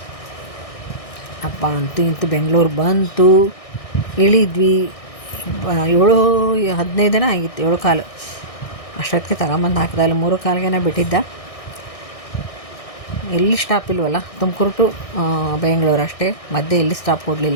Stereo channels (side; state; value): right; late; 1.6 ms